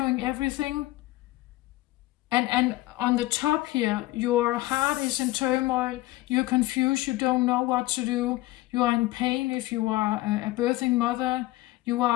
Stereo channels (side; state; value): right; quieter; 18.2 dB